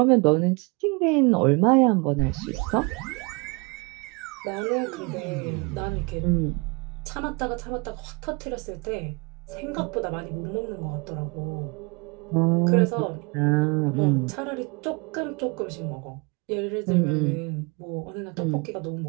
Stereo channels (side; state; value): left; quieter; 29.6 dB